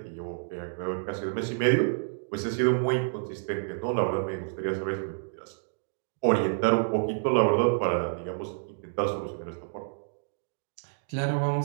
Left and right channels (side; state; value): left; silent; digital silence